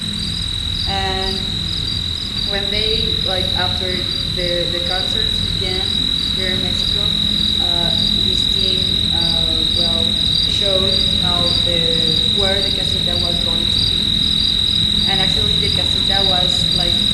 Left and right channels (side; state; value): both; identical; correlation 1.00